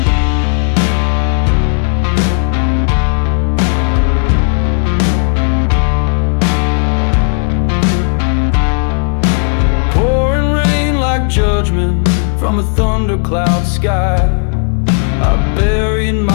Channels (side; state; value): right; silent; 58 dB below the other